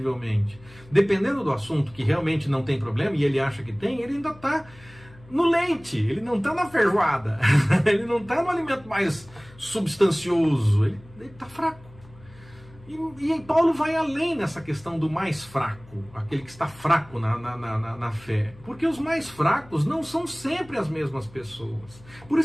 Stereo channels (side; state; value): left; noise; hum, 23 dB below the sound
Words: Dependendo do assunto que realmente não tem problema, e ele acha que tem, ele ainda está no leite, ele não está na feijoada, ele não está no alimento mais substancioso, ele está fraco. E Paulo vai além nessa questão do mais fraco, aquele que está fraco na fé. Porque os mais fracos não são sempre as mesmas pessoas. Por